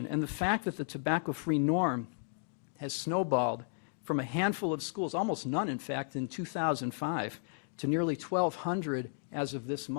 And the fact that the tobacco-free norm has snowballed from a handful of schools, almost none in fact, in 2005, to nearly 1,200 as of this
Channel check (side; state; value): right; silent; digital silence